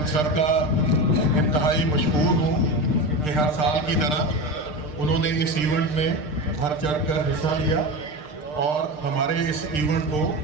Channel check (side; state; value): right; late; 6.6 ms